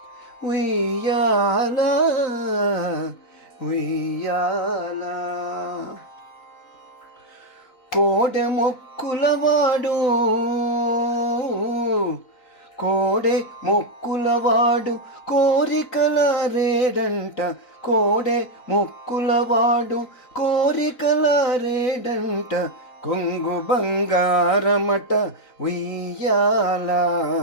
ఉయ్యాల, ఉయ్యాల. కోడె మొక్కులవాడు, కోడె మొక్కులవాడు కోరికల రేడంట, కోడె మొక్కులవాడు కోరికల రేడంట, కొంగు బంగారమట ఉయ్యాల,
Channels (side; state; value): right; late; 3.9 ms